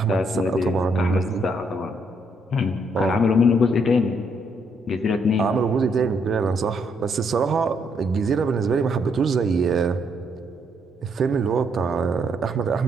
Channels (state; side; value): normal; both; correlation 0.73